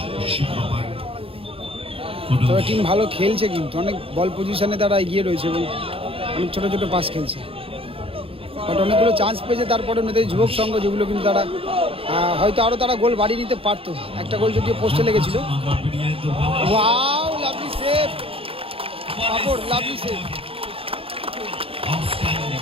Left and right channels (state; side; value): late; left; 0.27 ms